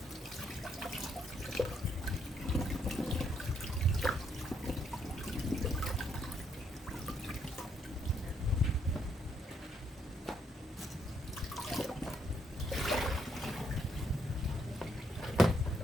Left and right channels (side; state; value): both; normal; correlation 0.73